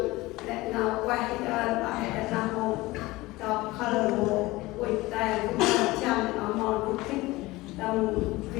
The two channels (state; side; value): quieter; right; 20.1 dB